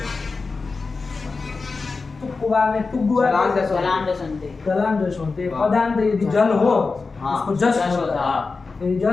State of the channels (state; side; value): quieter; right; 4.2 dB